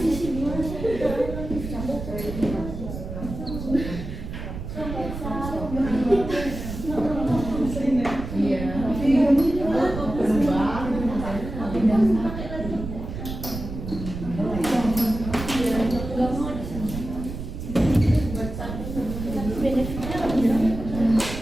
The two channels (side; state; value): right; noise; rumble, 8 dB below the sound